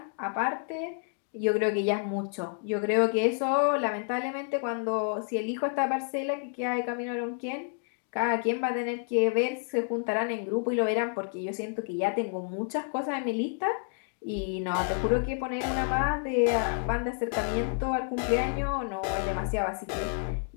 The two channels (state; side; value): silent; right; 58 dB below the other